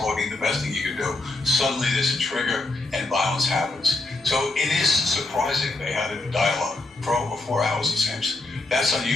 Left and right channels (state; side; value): quieter; right; 3.1 dB